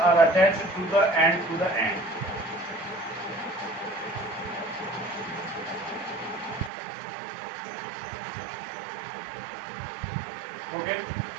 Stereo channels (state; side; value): drops out; left; at 6.7 s